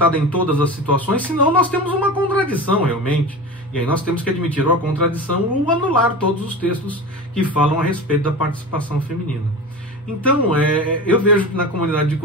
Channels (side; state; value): both; normal; correlation 0.30